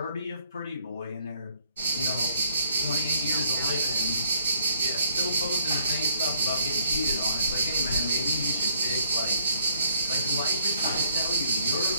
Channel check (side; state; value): both; inverted; correlation -0.64